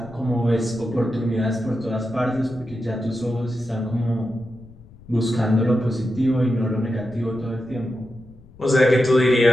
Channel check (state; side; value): noise; left; rumble, 23 dB below the sound